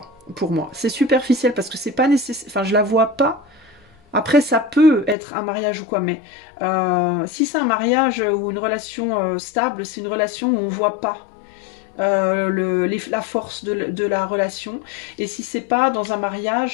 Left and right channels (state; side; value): drops out; right; at 5.2 s